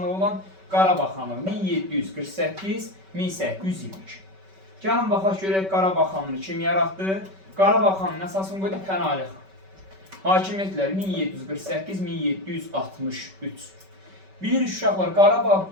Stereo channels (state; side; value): late; left; 5.2 ms